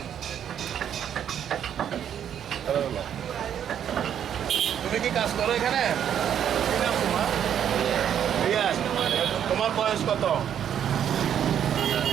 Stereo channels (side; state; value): left; quieter; 9.3 dB